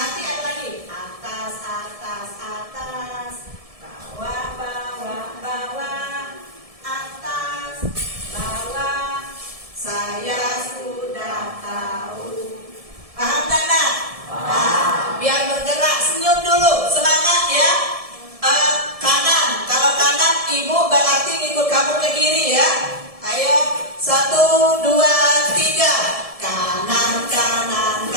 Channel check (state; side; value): late; left; 1.7 ms